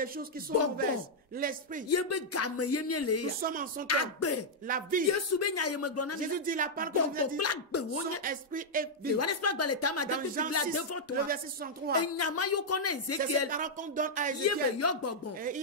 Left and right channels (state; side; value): normal; both; correlation -0.05